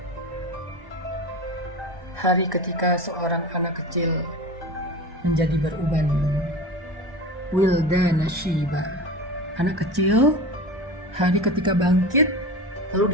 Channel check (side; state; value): left; late; 1.1 ms